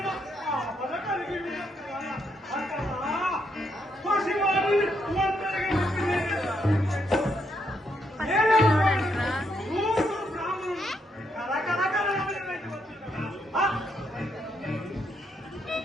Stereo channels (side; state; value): both; normal; correlation 0.77